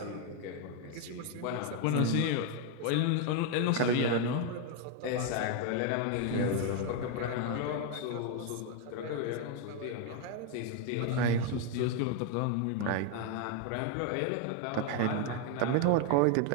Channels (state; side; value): different; both; correlation 0.01